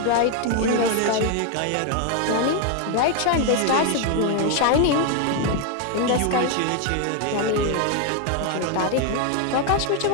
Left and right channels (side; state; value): both; different; correlation 0.01